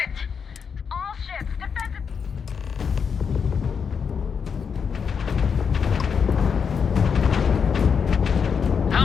All ships, defensive... How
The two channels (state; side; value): quieter; right; 6.4 dB